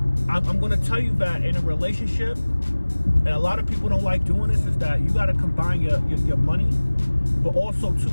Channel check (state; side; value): inverted; both; correlation -1.00